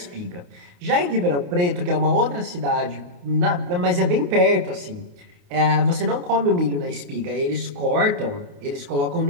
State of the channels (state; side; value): late; left; 28 ms